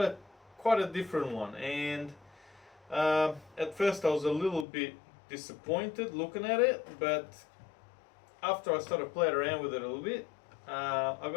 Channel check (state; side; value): drops out; right; at 4.7 s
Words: quite a different one, and at first I was a little bit disappointed looking at it, but after I started playing around with it a little bit, I've